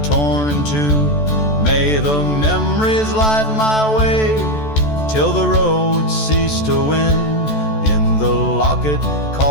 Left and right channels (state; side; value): late; right; 14 ms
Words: torn in two. May the memories light my way till the road ceased to wind. In the locket